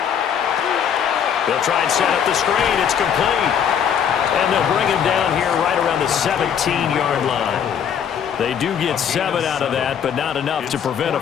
They'll try and set up the screen. It's complete. And they'll bring him down here right around the 17-yard line. They do get 7 out of that, but not enough to prevent a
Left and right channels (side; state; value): right; quieter; 8.2 dB